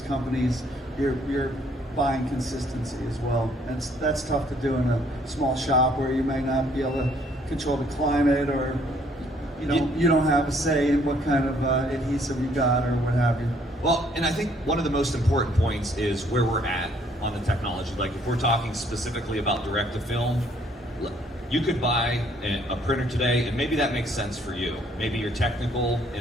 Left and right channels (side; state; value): both; normal; correlation 0.64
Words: companies, you're buying consistency as well. And that's tough to do in a small shop where you may not be able to control the climate, or you don't have a say in what kind of adhesive you got or what have you. Well, and I think one of the most important points is where we're at on the technology. Like if we're talking specifically about direct to film, you could buy a printer today, and maybe that makes sense for you. Maybe you're technical,